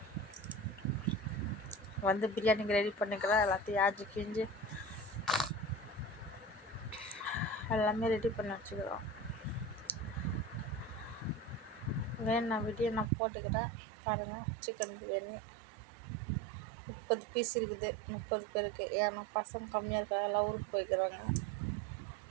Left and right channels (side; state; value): left; drops out; at 13.1 s